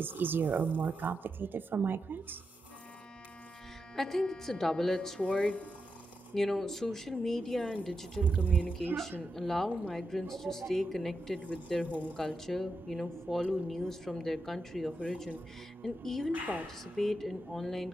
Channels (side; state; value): both; normal; correlation 0.87